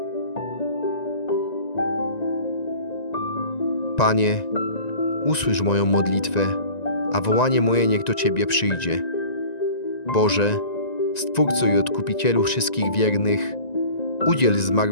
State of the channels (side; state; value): right; late; 1.9 ms